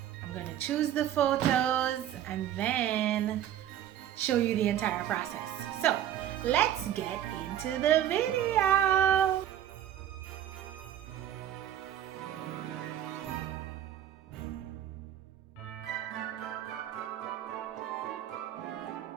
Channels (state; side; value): quieter; left; 11.2 dB